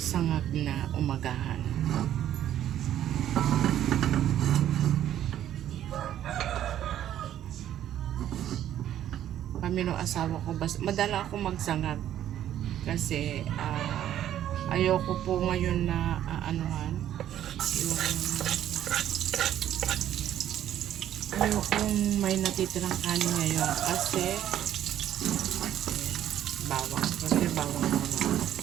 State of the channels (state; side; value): quieter; left; 11.4 dB